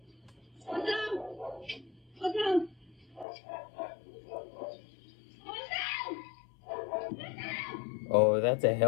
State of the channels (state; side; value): drops out; right; at 3.2 s